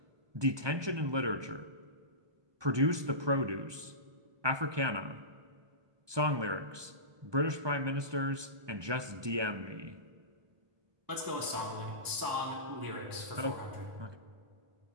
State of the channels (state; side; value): late; left; 1.2 ms